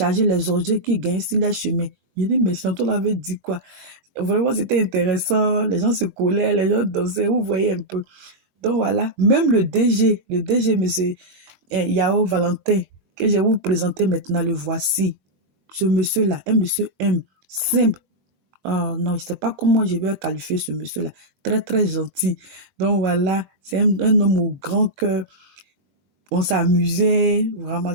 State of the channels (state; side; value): late; left; 22 ms